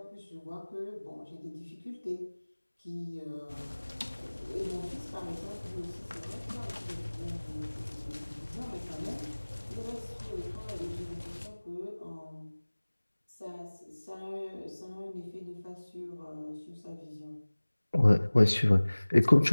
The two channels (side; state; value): both; inverted; correlation -1.00